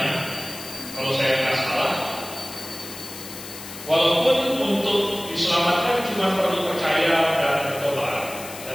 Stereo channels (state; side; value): noise; left; hiss, 13 dB below the sound